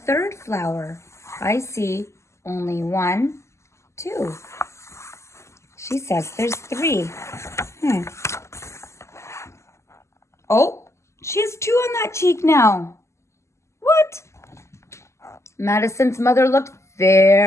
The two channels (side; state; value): right; late; 0.13 ms